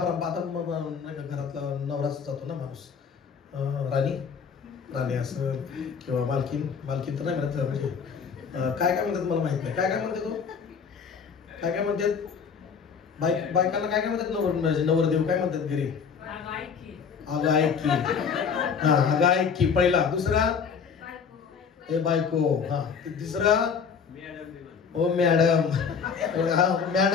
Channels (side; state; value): right; quieter; 6.3 dB